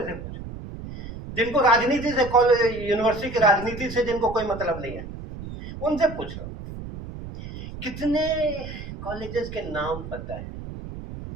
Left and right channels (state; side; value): noise; right; rumble, 10 dB below the sound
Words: से पूछो, जिनको राजनीति से, कॉलेज यूनिवर्सिटी की राजनीति से जिनको कोई मतलब नहीं है, उनसे पूछो कितने कॉलेजेस के नाम पता है।